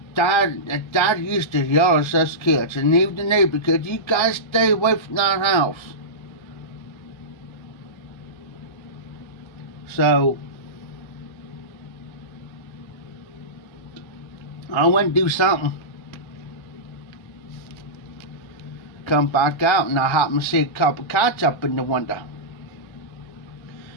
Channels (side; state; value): right; late; 1.3 ms